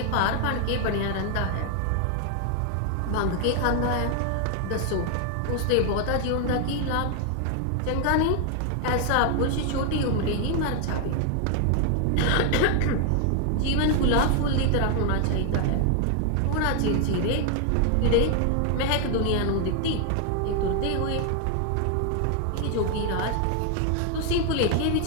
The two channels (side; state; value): both; different; correlation 0.00